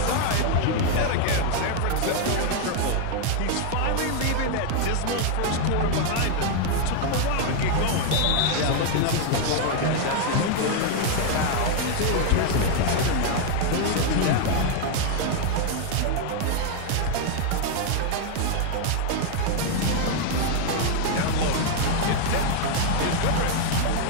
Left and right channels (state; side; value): different; both; correlation 0.00